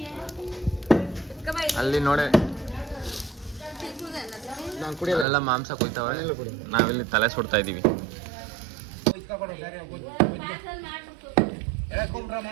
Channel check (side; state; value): left; drops out; at 5.2 s